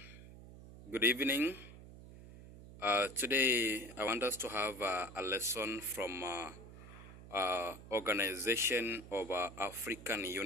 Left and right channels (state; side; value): noise; right; hum, 16 dB below the sound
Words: good evening. Today I want us to have a lesson from Organization of African